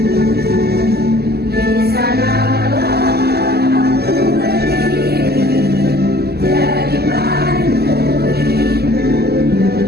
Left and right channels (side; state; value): left; late; 0.46 ms